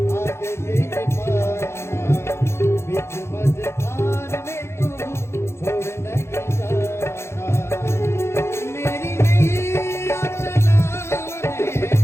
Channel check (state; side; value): late; right; 0.13 ms